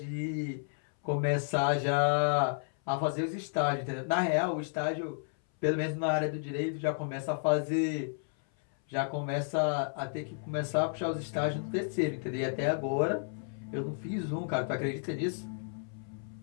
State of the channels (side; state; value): right; silent; 56 dB below the other